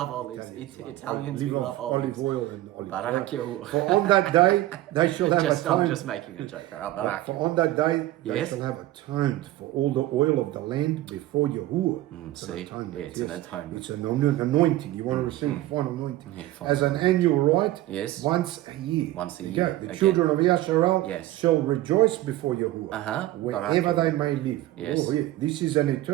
olives. Italians, we Live love off olives. olive oil and olive Barak oil. Yahuwah. For on that day they shall have I'm atoned. just making a joke. Barak For on that day they Yes. shall have atoned for all the oil of the land before Yahuwah. It's see? atonement. Yeah, it's an atonement. It's an anointing. You want to receive final anointing. Yeah, fine. As an annual rite, Yes. once a year. Once a There you year. go. The Again. children of Yasharel Yes. shall rejoice before Yahuwah, wherever Barak they may live. Yes. Oh, yeah. This is an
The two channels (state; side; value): quieter; left; 15.9 dB